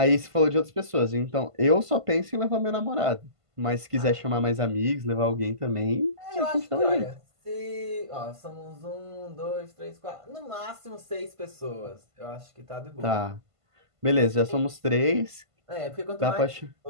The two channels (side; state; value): left; late; 1.5 ms